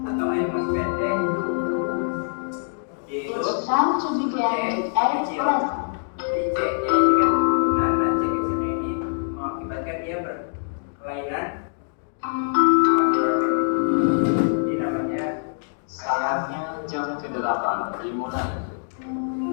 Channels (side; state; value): right; silent; digital silence